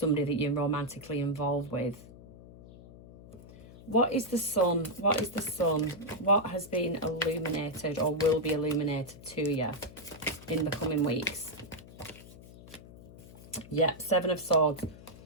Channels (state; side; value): noise; left; hum, 18 dB below the sound